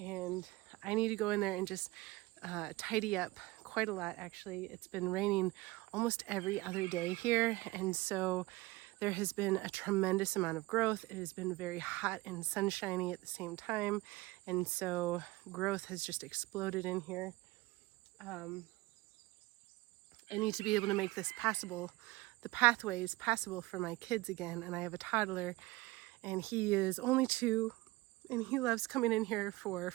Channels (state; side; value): quieter; left; 20.5 dB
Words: I need to go in there and just tidy up quite a lot, actually. It's been raining almost every other day here, and so there has been a tremendous amount of growth. It has been very hot and sunshiny at the same time, and so growth has just exploded in here. I need to be able to make this passable, the pathways passable for my kids again, and I have a toddler, and he is only 2, and he loves coming in here for